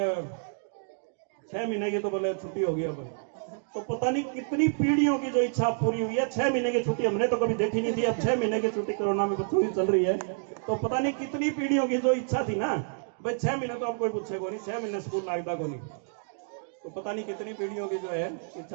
6 महीने की तो बोले छुट्टी होगी अब। तो पता नहीं कितनी पीढ़ियों की जो इच्छा पूरी हुई है। 6 महीने की छुट्टी हमने तो कभी देखी नहीं थी, अब 6 महीने की छुट्टी कोरोना में बच्चों की चल रही है। तो पता नहीं कितनी पीढ़ियों की जो इच्छा थी ना, भाई 6 महीने तो अब कोई पूछे को नहीं, 6 महीने स्कूल लगता को नहीं। तो पता नहीं कितनी पीढ़ियों की जो है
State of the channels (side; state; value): left; silent; digital silence